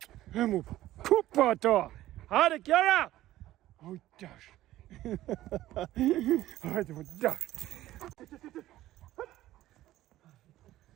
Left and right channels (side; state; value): left; quieter; 14.9 dB